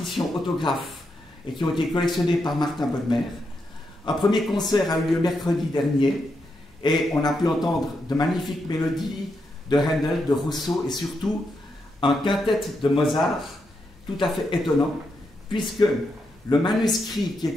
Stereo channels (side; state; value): both; normal; correlation 0.83